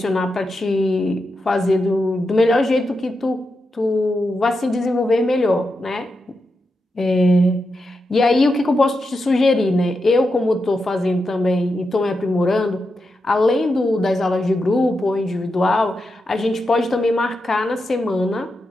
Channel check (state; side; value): normal; both; correlation 0.87